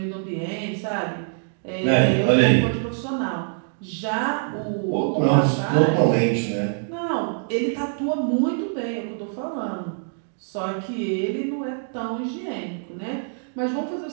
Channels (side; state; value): left; silent; digital silence